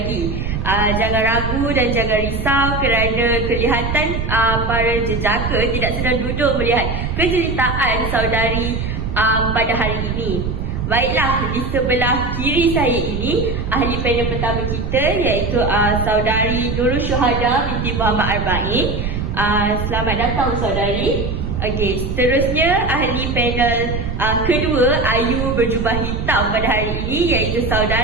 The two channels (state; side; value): noise; right; rumble, 4 dB below the sound